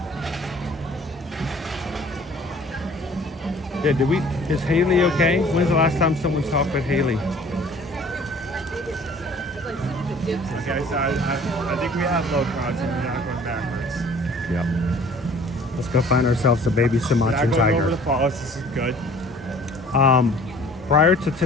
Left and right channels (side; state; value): both; normal; correlation 0.51